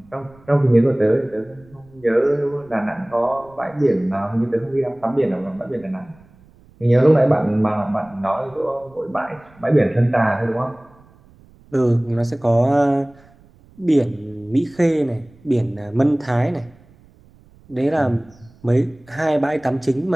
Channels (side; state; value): right; noise; rumble, 27 dB below the sound